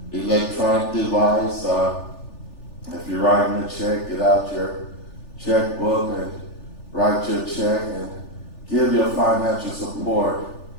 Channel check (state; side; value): late; right; 3.4 ms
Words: electronic device. If you're writing a check, get out your checkbook and write your check and give your financial support